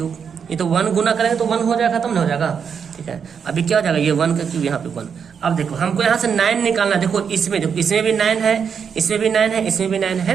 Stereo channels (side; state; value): left; quieter; 6.9 dB